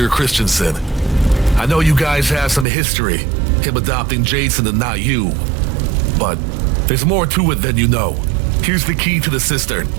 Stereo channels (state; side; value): drops out; left; at 2.7 s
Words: Christensen. I know you guys have some history, him adopting Jason and not you. But there's more to it than you know. Here's the key to the cistern.